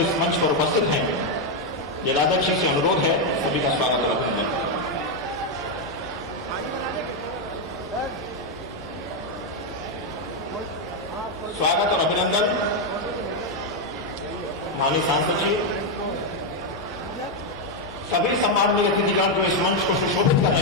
मंच पर उपस्थित हैं, जिलाध्यक्ष जी से अनुरोध है सभी का स्वागत और अभिनंदन करें। स्वागत और अभिनंदन माननीय सांसद जी, सभी सम्माननीय अतिथिगण जो इस मंच को सुशोभित कर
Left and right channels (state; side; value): normal; both; correlation 0.02